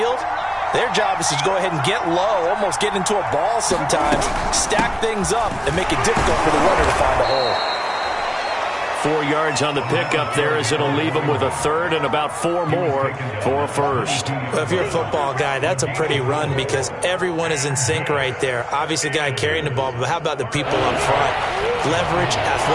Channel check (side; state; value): both; identical; correlation 1.00